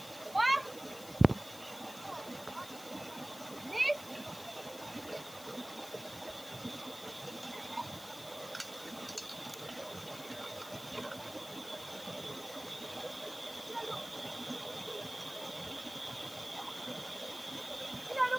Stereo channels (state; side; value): noise; left; hiss, 14 dB below the sound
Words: What? This? You don't